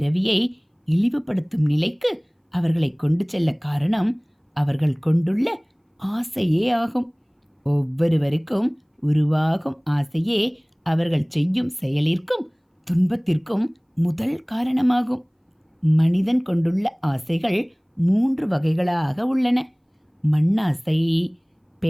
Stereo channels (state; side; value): identical; both; correlation 1.00